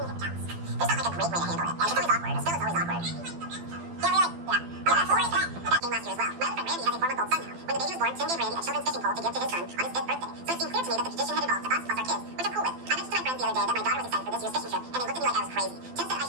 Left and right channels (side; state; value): left; late; 12 ms